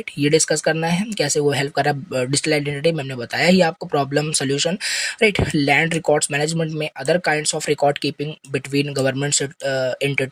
ये डिस्कस करना है कैसे वो हेल्प कर रहा है डिजिटल आइडेंटिटी में, हमने बताया ही आपको problem solution, right. Land records management में other kinds of record keeping between government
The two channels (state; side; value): identical; both; correlation 1.00